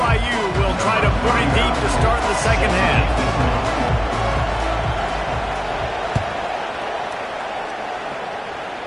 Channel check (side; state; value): both; identical; correlation 1.00